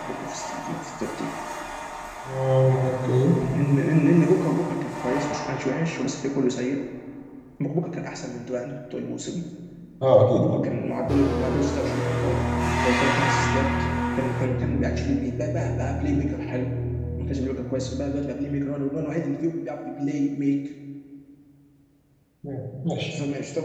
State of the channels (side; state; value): both; identical; correlation 1.00